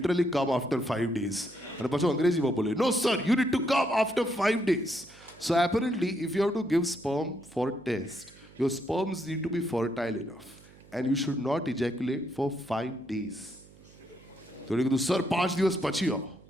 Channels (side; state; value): right; noise; hum, 24 dB below the sound